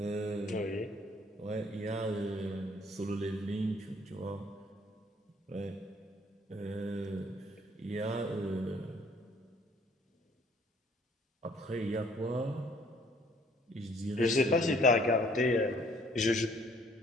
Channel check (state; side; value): normal; both; correlation 0.60